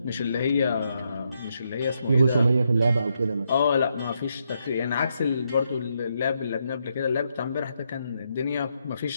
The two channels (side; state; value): both; inverted; correlation -0.79